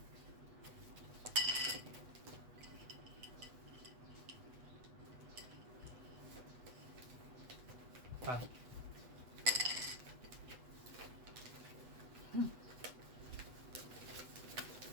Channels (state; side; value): late; left; 8.0 ms